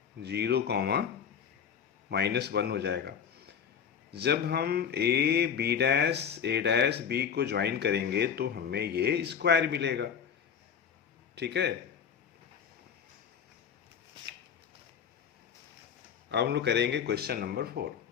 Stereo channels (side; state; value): right; quieter; 7.6 dB